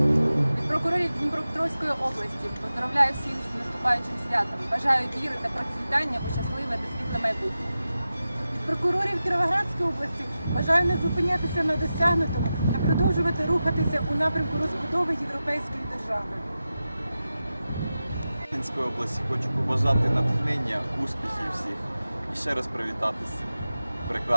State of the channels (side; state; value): both; inverted; correlation -0.93